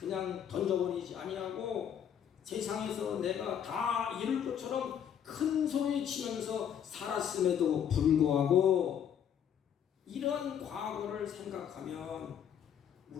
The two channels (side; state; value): right; quieter; 8.8 dB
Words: 던져버리지 아니하고 세상에서 내가 다 이룰 것처럼 큰 소리 치면서 살았음에도 불구하고 이런 과거를 생각하면